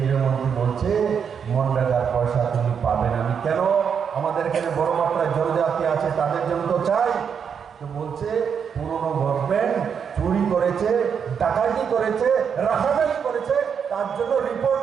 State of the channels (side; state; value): left; quieter; 7.1 dB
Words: মন্ত্রী বলছে মনরেগার পয়সা তুমি পাবে না। আমি কেন? আমাদের এখানে বড় মাত্রায় জনজাতি আছে, তাদের জন্য তো চাই। তো বলছে পুরনো গভর্নমেন্ট চুরি করেছে, ডাকাতি করেছে, রাহাজানি করেছে, তার জন্য রিপোর্ট